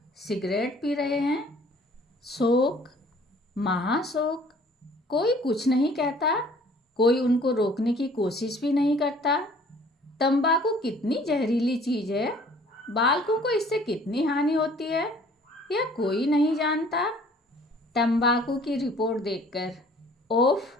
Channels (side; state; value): both; normal; correlation 0.54